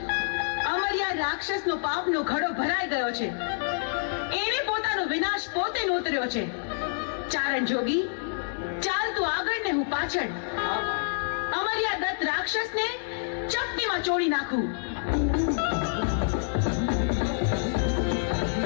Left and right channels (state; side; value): silent; right; 60 dB below the other